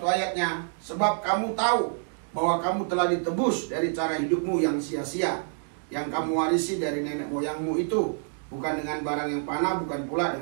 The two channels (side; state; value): left; silent; digital silence